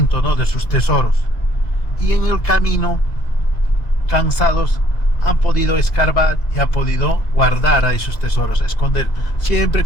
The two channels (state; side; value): late; right; 2.0 ms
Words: ¿no? De sus tesoros. Y en el camino, cansados, han podido escarbar y han podido guardar a esos tesoros, esconder, siempre